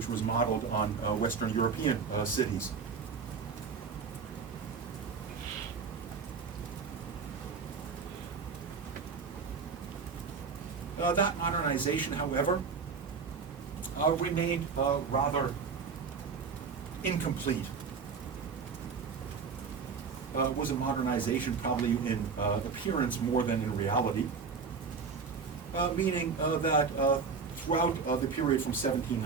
was modeled on Western European cities. That modernization, however, remained rather incomplete. Was a modernization probably in appearance more than in reality, meaning that throughout the period from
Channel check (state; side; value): quieter; left; 5.4 dB